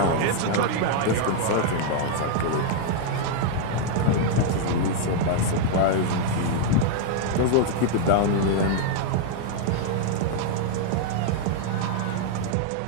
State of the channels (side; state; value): both; different; correlation 0.00